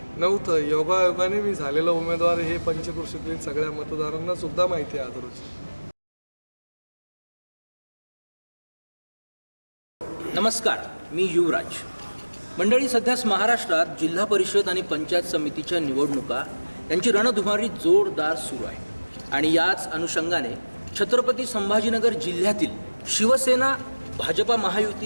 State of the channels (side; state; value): both; inverted; correlation -1.00